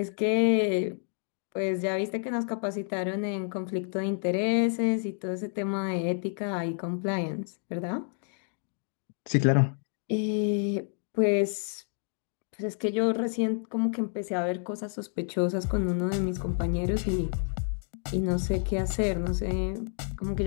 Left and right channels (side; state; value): right; silent; 58 dB below the other